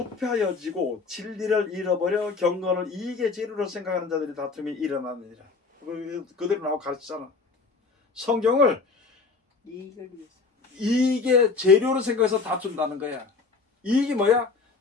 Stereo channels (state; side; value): quieter; right; 4.4 dB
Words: 진리를 잃어버려 경건을 이익의 재료로 생각하는 자들이 다툼이 일어나느니라. 그대로 나오고 가르치잖아. 성경을 이익을 위해서. 이익의 재료로 생각해서 다툰다는 거야. 이익이 뭐야?